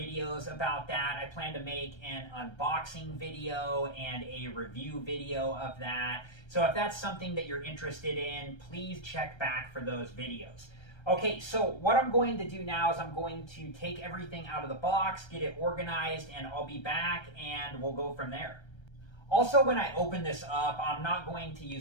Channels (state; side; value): late; right; 1.3 ms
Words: about that. I plan to make an unboxing video and a review video of that. So if that's something that you're interested in, please check back for those videos. Okay, so what I'm going to do now is I'm going to take everything out of the box, get it organized, and I'll be back and we'll go from there. Also, when I open this up, I'm not going to